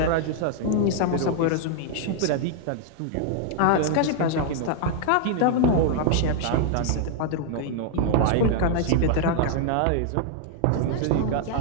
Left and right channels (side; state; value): both; different; correlation -0.01